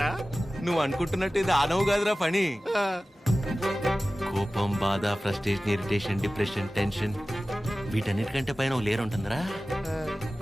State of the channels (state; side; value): normal; both; correlation 0.96